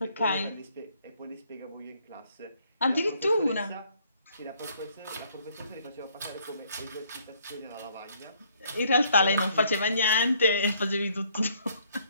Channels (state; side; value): inverted; both; correlation -0.65